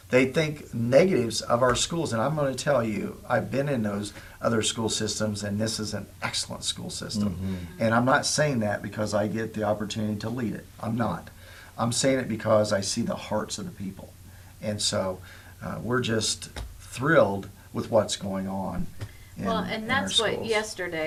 They think negatives of our schools, and I'm going to tell you, I've been in those other school systems, and this is an excellent school system. And I'm not saying that because I get the opportunity to lead it. I'm not. I'm saying it because I see the hearts of the people. And so we're just thrilled with what's going on. Well, and in that's our what schools.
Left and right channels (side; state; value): both; identical; correlation 1.00